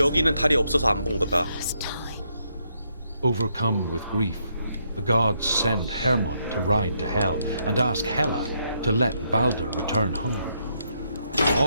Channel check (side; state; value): both; inverted; correlation -0.76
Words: 달이 없어서 안 본 거다. first time. Overcome with grief, the gods send Hermod to ride to Hell and ask Hela to let Balder return home.